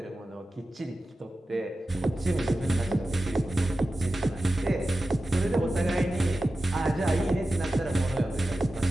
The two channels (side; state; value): both; normal; correlation 0.94